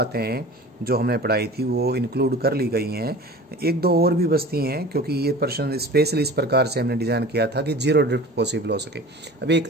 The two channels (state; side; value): normal; both; correlation 0.39